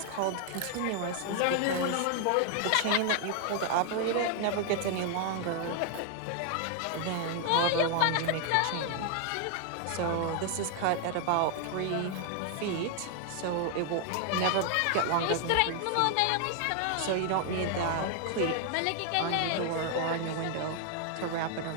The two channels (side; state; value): both; different; correlation 0.00